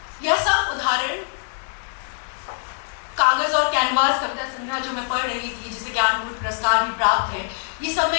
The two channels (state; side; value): silent; right; 63 dB below the other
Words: यह सब उदाहरण कागज और कैनवास कविता संग्रह जो मैं पढ़ रही थी, जिसे ज्ञानपीठ पुरस्कार भी प्राप्त है, ये सब